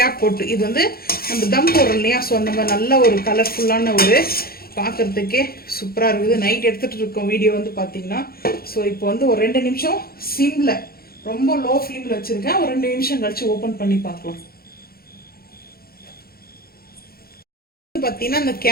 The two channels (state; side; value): late; right; 0.44 ms